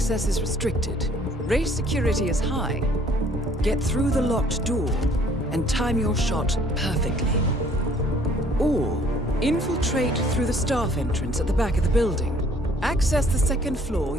is restricted. Race security is high. Get through the locked door and time your shot perfectly. Or infiltrate through the staff entrance at the back of the building. Access the second floor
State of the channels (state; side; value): normal; both; correlation 0.58